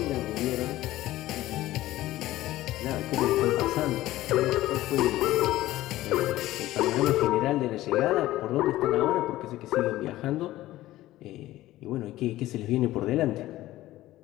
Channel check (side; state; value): right; quieter; 15.8 dB